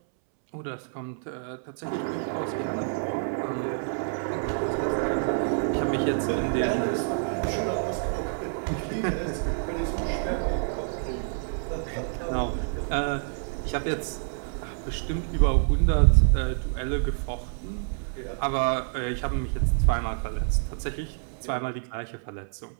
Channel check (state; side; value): silent; left; 60 dB below the other